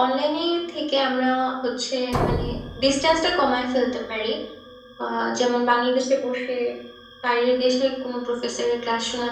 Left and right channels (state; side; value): identical; both; correlation 1.00